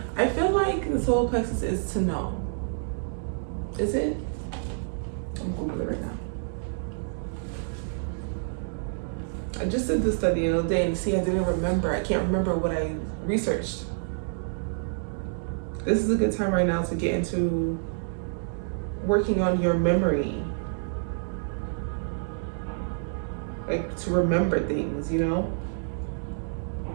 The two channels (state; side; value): silent; left; digital silence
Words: I feel like the solar plexus is to know. Is it? I'm Googling it right now. I just did this study the other day and see, I can't remember what I researched. This is a good time right now to get into working on your memory. Like to remember things, you know?